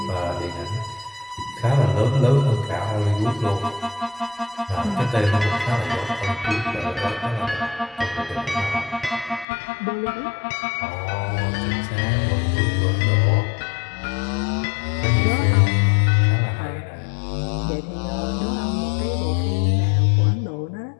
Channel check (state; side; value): drops out; right; at 9.5 s